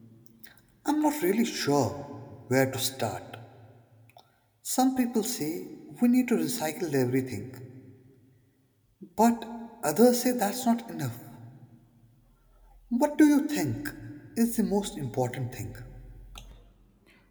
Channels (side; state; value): both; identical; correlation 1.00